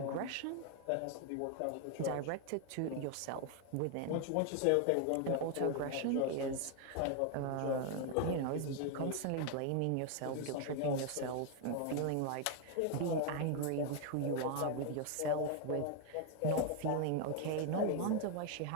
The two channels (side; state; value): both; different; correlation 0.01